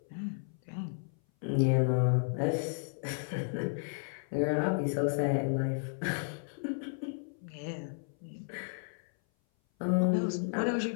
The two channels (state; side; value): silent; right; 56 dB below the other